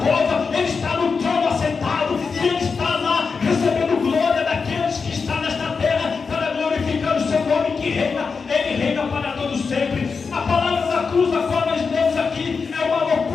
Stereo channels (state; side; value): quieter; right; 5.1 dB